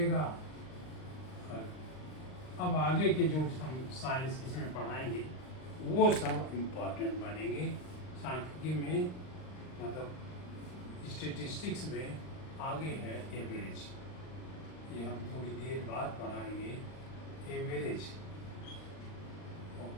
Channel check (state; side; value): late; right; 39 ms